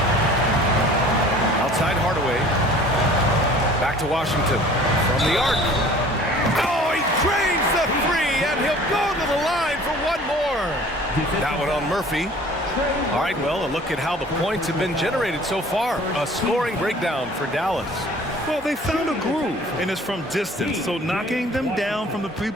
Outside Hardaway. Back to Washington. From the arc. Oh, he drains the three, and he'll go to the line for one more. That one on Murphy. All right, well, a look at how the points have been generated so far. A scoring breakdown for Dallas. Well, they found a groove, and it's from distance, so knocking them down from the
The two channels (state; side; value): normal; both; correlation 0.48